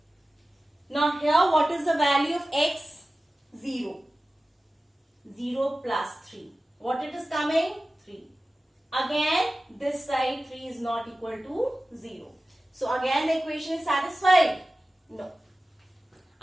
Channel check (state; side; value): normal; both; correlation 0.96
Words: Now here what is the value of x? 0. 0 plus 3. What it is coming? 3. Again this side 3 is not equal to 0. So again the equation is satisfied? No.